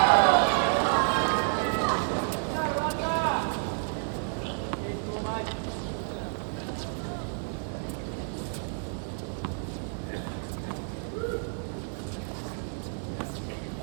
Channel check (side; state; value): left; silent; digital silence